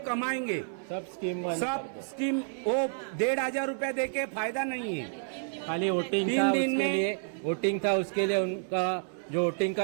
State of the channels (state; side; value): silent; left; 56 dB below the other